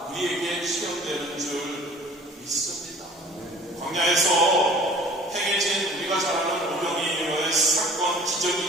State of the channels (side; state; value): both; normal; correlation 0.48